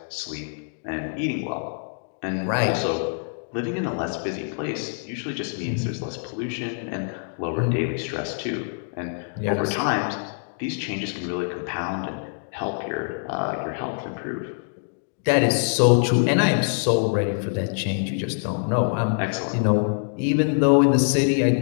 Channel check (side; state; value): right; silent; digital silence